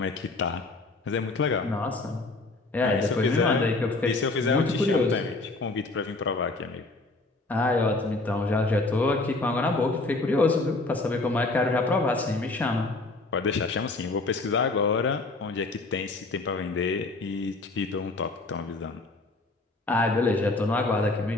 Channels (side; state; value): right; quieter; 3.2 dB